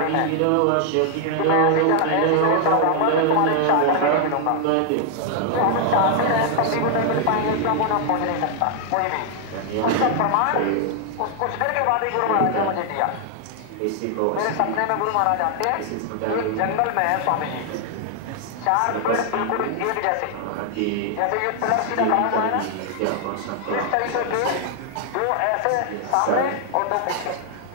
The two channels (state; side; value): different; both; correlation 0.00